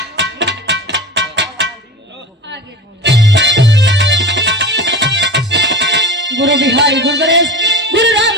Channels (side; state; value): both; normal; correlation 0.33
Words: गुरु बिहारी गुरु गणेश गुरु